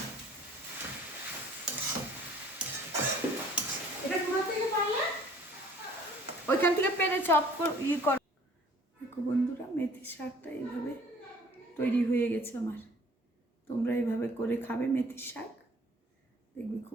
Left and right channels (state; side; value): normal; both; correlation 0.54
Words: এটা কোথা থেকে পারলে? ওইখান থেকে পেরে চপ কর। দেখো বন্ধুরা, মেথির শাকটা এইভাবে তৈরি হয়ে গেছে আমার। তোমরা এইভাবে করে খাবে মেথির শাক, দেখবি